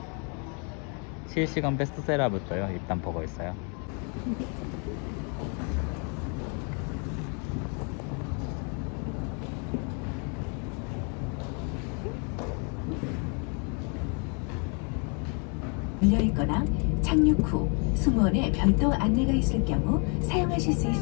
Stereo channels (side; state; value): right; quieter; 37.2 dB